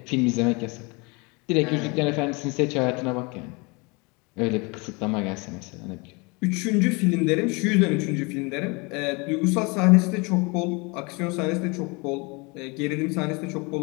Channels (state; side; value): quieter; right; 28.4 dB